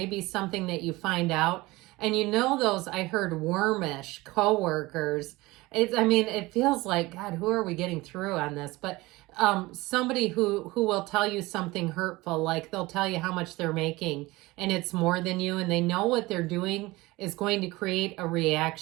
be something that you find out. And you know those, I heard wormish coworkers. It feels like, God, who are we getting through on this? But somebody who will tell you something hurtful, like they'll tell you how much they're making and it's more than you, and they know what they're doing is going to create a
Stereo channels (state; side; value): quieter; left; 20.8 dB